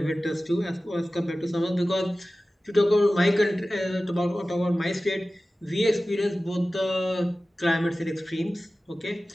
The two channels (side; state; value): both; normal; correlation 0.96